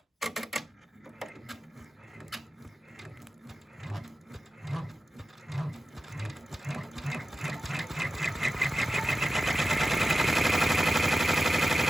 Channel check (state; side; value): normal; both; correlation 0.93